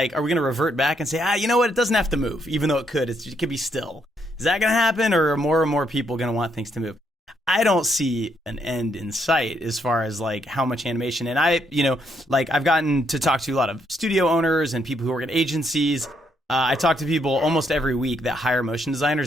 we gonna revert back and say, you know what, it doesn't have to move, even though it could be still? Is that gonna happen, or are more and more people gonna want things to move? I don't see an end in sight as far as how much animation. And I've gotten to talk to a lot of studio owners and people who work at agencies. I talk to people almost every week that hire motion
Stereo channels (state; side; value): normal; both; correlation 0.74